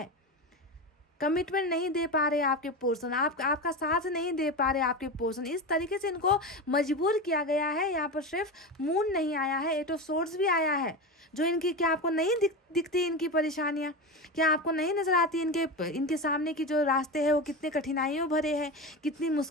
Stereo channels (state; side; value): normal; both; correlation 0.22